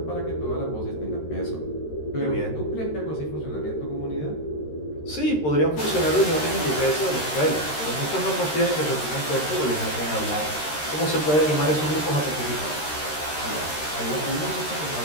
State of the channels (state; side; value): late; right; 13 ms